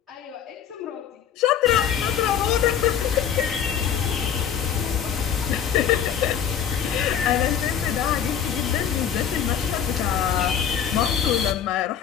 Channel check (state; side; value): quieter; right; 8.6 dB